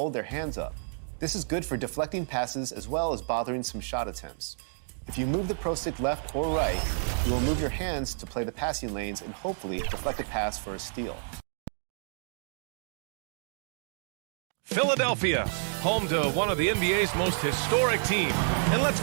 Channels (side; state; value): left; silent; digital silence